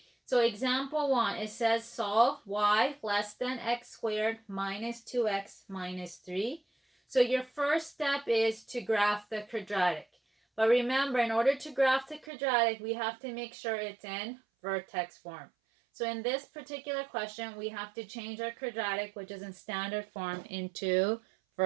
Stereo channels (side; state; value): left; drops out; at 12.3 s